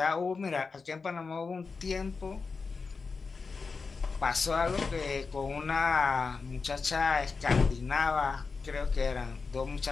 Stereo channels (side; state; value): right; quieter; 4.7 dB